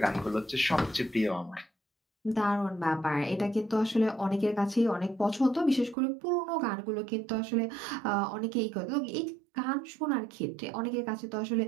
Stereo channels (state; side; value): drops out; left; at 6.0 s